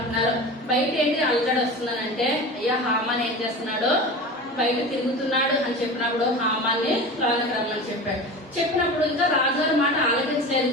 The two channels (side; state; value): both; normal; correlation 0.32